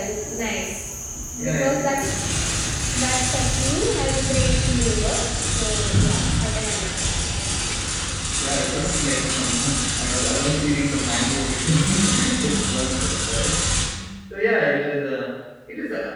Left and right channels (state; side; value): identical; both; correlation 1.00